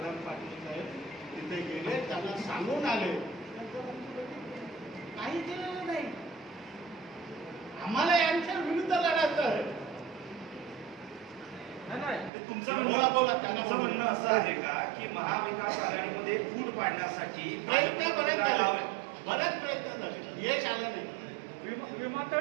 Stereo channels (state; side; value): drops out; left; at 12.3 s